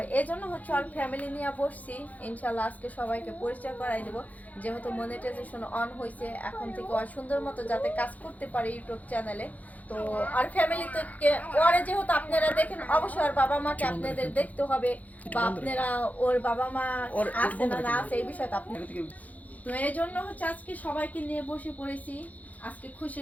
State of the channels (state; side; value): late; right; 0.077 ms